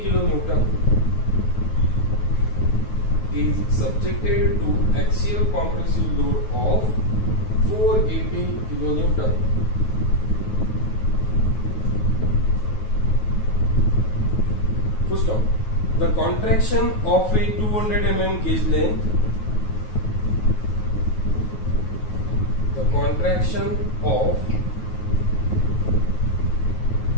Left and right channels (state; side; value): late; right; 9.4 ms